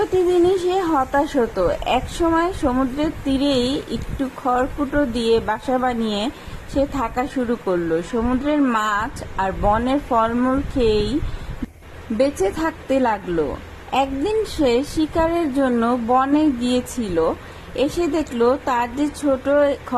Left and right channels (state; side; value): identical; both; correlation 1.00